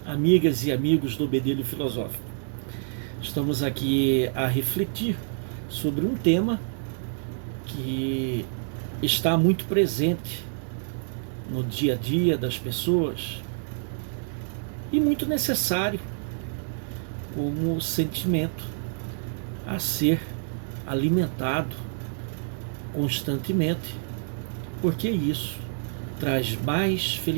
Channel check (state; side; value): silent; left; digital silence